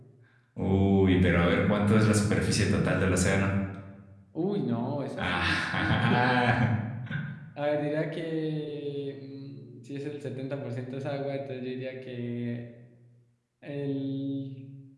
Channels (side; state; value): both; identical; correlation 1.00